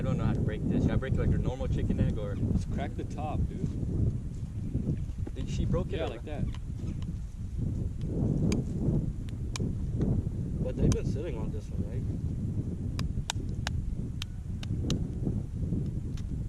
don't know how to break this. Should I break it like a normal chicken egg or? Just crack the top, dude. She broke it. Yeah, or- like that. But they've been sitting on this one, right?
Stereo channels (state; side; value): identical; both; correlation 1.00